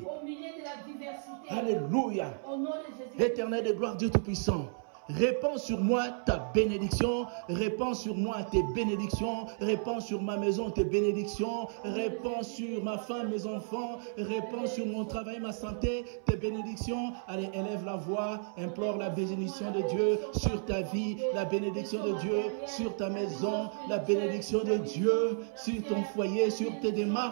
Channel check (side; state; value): left; silent; 56 dB below the other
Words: milieu de la diversité. Alléluia. Au nom de Jésus. Éternel de gloire, Dieu Tout-Puissant, répands sur moi ta bénédiction, répands sur moi tes bénédictions, répands sur ma maison tes bénédictions, répands sur ma femme, mes enfants, répands sur mon travail, ma santé, tes bénédictions. Allez, élève la voix, implore la bénédiction de Dieu sur ta vie, la bénédiction de Dieu sur ta maison, la bénédiction de Dieu sur ton foyer, sur tes